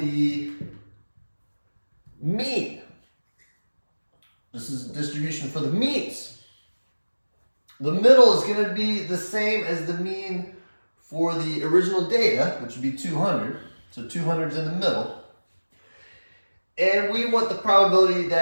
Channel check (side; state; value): both; inverted; correlation -1.00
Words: mean. This is distribution for the means. The middle is going to be the same as the mean for the original data, which would be 200. So 200 is in the middle. And we want the probability